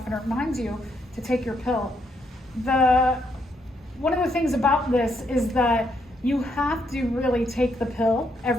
and it reminds you to take your pill. One of the things about this is that you have to really take the pill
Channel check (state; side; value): normal; both; correlation 0.75